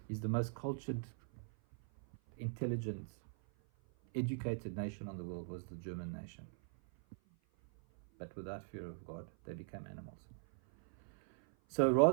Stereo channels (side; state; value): left; silent; 51 dB below the other